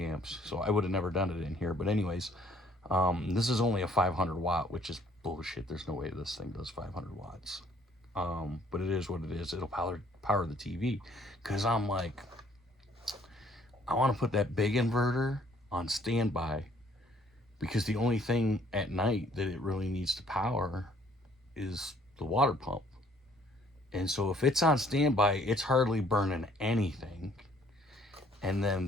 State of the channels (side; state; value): both; normal; correlation 0.61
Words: amps, so I would have never done it in here. But anyways, this is only a 500 watt, which is bullshit. There's no way this thing does 500 watts. But it is what it is. It'll power the TV because I'm like, I want to put that big inverter on standby because the only thing at night that it really needs to power is the water pump. And so if it's on standby, it's hardly burning anything. And